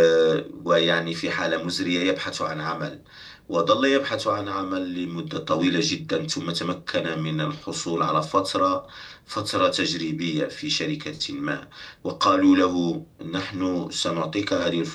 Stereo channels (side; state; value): both; identical; correlation 1.00